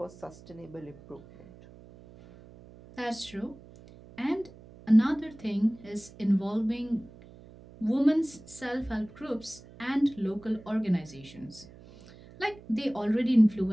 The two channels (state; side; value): noise; right; hum, 21 dB below the sound